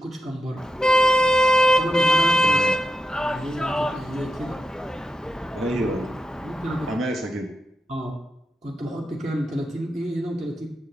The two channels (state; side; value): normal; both; correlation 0.88